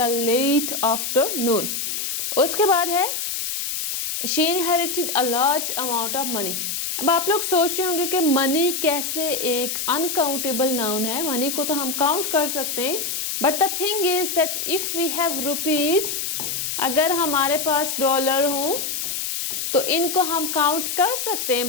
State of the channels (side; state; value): left; noise; hiss, 3 dB below the sound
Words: late afternoon. उसके बाद है she inherited a large amount of money. अब आप लोग सोच रहे होंगे कि मनी कैसे एक अनकाउंटेबल नाउन है। मनी को तो हम काउंट कर सकते हैं, but the thing is that if we have rupees, अगर हमारे पास डॉलर हो तो इनको हम काउंट कर सकते हैं,